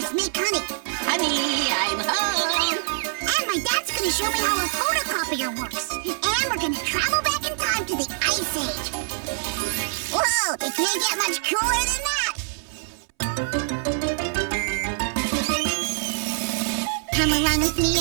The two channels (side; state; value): left; silent; 60 dB below the other